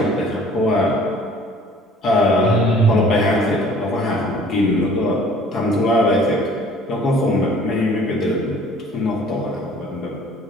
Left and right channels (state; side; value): normal; both; correlation 0.52